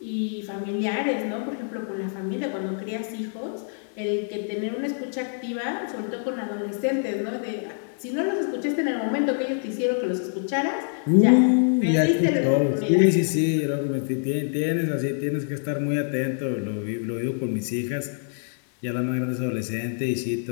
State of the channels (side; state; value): right; silent; digital silence